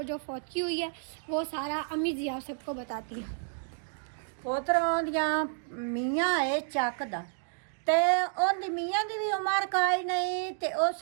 जो फौतगी हुई है वो सारा अम्मी जी आप सबको बताती हैं। पोतरों दियां मियाँ है चकदा ते ओंदी मियाँ दी भी उम्र काई नहीं ते उस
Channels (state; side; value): silent; left; digital silence